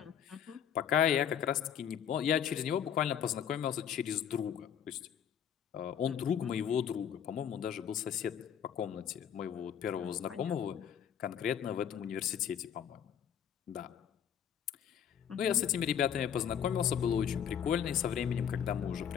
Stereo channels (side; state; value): right; quieter; 8.7 dB